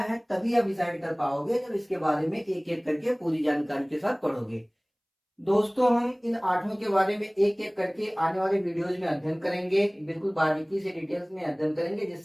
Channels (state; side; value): identical; both; correlation 1.00